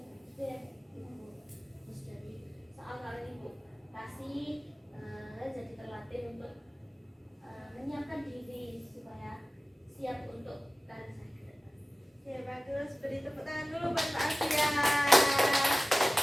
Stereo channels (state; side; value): normal; both; correlation 0.96